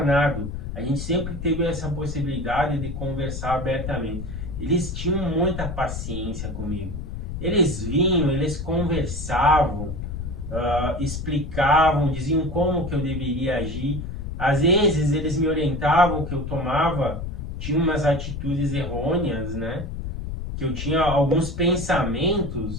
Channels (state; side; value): noise; left; rumble, 6 dB below the sound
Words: A gente sempre teve essa possibilidade de conversar abertamente. Eles tinham muita paciência comigo. Eles vinham, eles conversavam, explicavam, diziam como que eu deveria agir. Às vezes eles me orientavam que eu tinha umas atitudes errôneas, né? Que eu tinha alguns